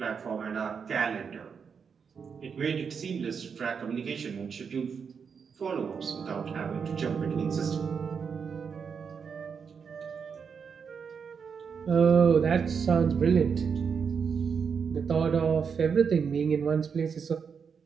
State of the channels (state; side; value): quieter; left; 6.3 dB